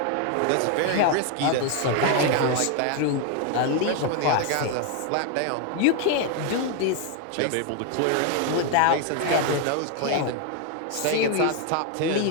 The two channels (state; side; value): different; both; correlation 0.01